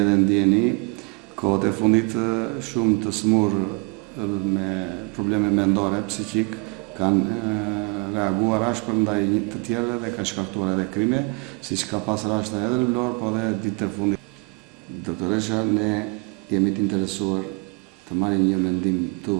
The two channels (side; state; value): left; quieter; 32.0 dB